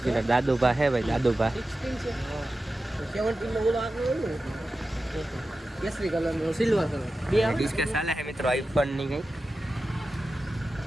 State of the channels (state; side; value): normal; both; correlation 0.93